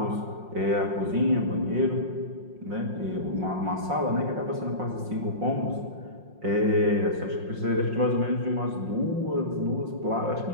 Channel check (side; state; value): left; late; 5.6 ms